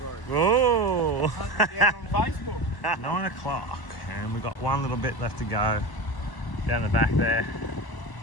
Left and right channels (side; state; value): right; late; 1.0 ms